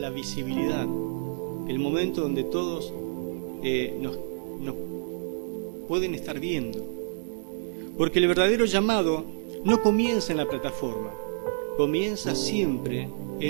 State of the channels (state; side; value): silent; left; digital silence